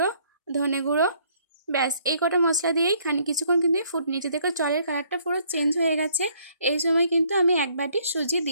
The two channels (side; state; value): both; inverted; correlation -0.64